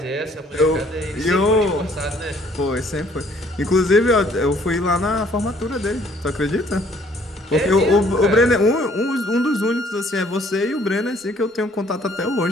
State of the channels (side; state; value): both; normal; correlation 0.60